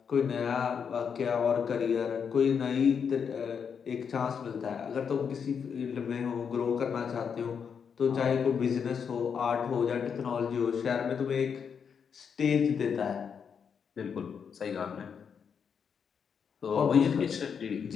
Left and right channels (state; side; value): quieter; right; 6.8 dB